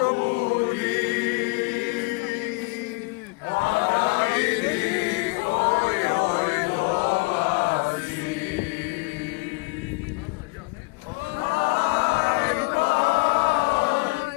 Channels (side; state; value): right; quieter; 28.4 dB